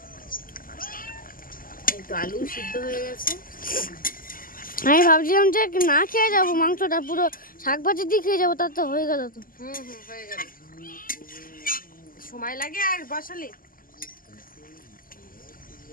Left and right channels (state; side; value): late; right; 0.41 ms